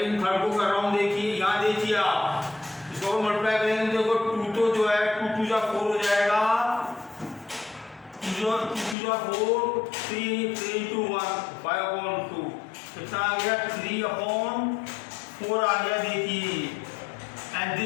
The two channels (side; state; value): right; drops out; at 9.0 s